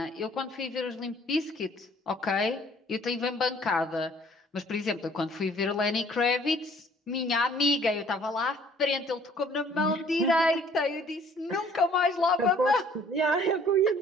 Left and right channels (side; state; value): both; normal; correlation 0.57